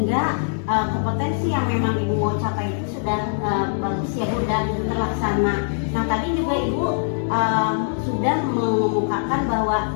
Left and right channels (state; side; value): silent; right; digital silence